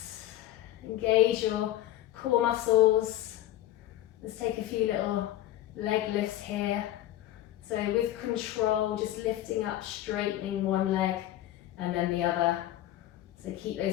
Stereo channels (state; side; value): quieter; right; 13.8 dB